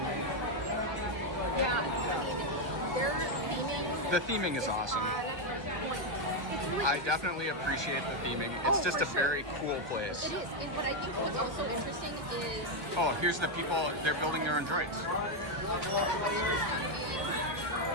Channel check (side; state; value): left; late; 1.5 ms